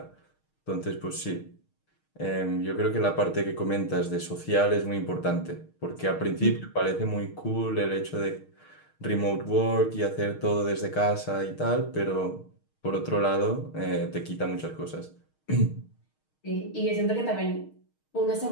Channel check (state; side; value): late; right; 6.5 ms